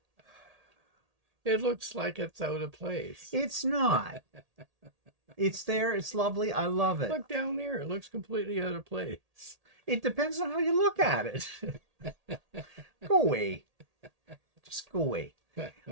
It looks like it's out of place. It's not. It's there. It's lovely. I love it. Look down there. It looks completely out of place. It depends on how you look at it. Go away. Just go away.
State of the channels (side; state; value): left; late; 1.8 ms